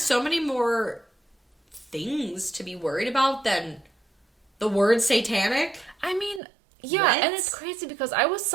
many more things to be worried about than the word satanic. I mean, yeah, and it's crazy because I was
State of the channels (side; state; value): left; drops out; at 6.4 s